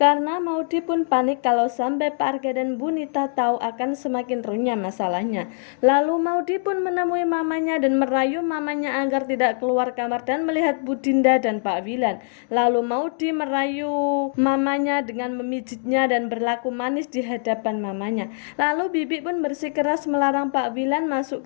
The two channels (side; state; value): right; silent; digital silence